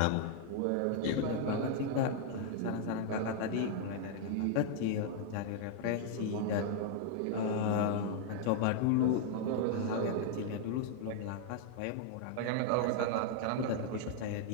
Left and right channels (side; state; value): both; different; correlation 0.00